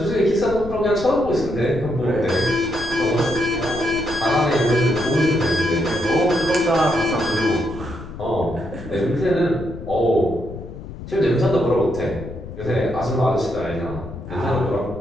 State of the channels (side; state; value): left; noise; rumble, 12 dB below the sound